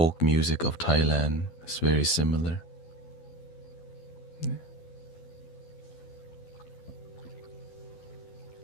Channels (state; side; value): late; right; 12 ms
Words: music of Thailand is very similar. Yeah.